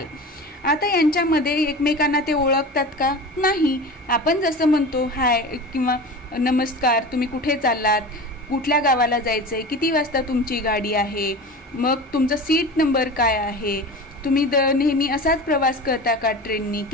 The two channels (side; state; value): both; normal; correlation 0.32